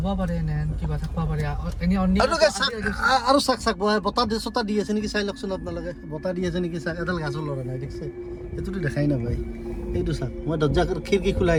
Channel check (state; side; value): identical; both; correlation 1.00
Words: পাৰে এনে কিবা থাকিব পাৰে এনেই আৰু চাক চাক বতাহ দি চতাহ দি আছে নেকি চাই লওকচোন আপোনালোকে বতাহ দি আছে নেকি চাক এডাল গাছৰ লৰা নাই দেখিছে সেইটোতো দেখাই নাপায় এইটো চাক মই দৰ্জা খিৰিকী